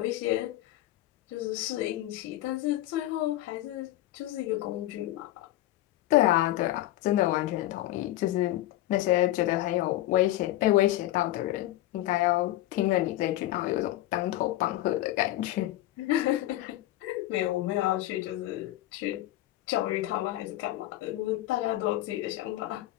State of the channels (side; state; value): right; quieter; 15.6 dB